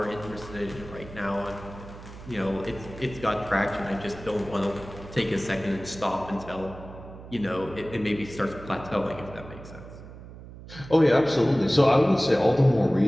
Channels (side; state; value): right; noise; hum, 15 dB below the sound